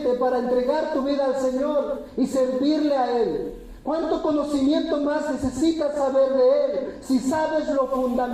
para entregar tu vida al Señor y servirle a Él? ¿Cuánto conocimiento más necesitas saber de Él si sabes lo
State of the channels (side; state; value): both; identical; correlation 1.00